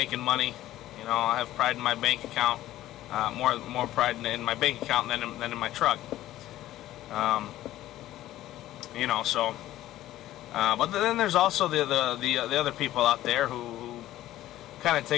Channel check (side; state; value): right; quieter; 14.4 dB